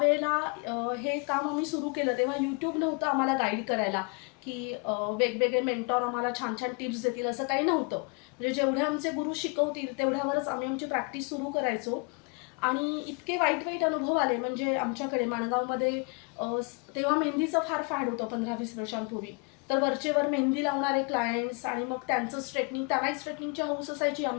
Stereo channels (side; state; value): right; quieter; 32.1 dB